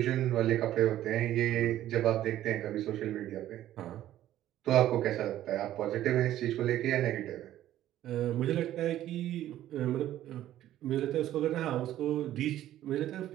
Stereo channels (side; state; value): left; quieter; 12.9 dB